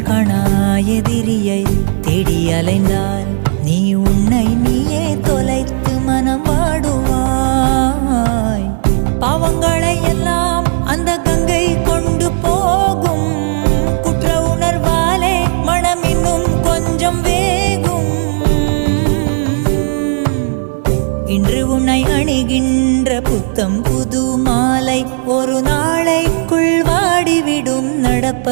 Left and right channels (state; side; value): silent; left; digital silence